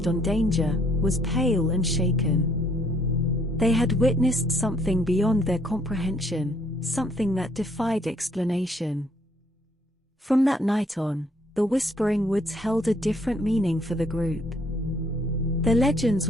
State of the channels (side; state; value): both; normal; correlation 0.65